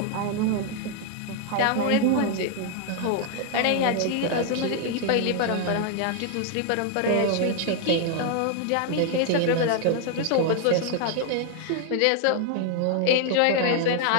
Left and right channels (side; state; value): both; different; correlation 0.00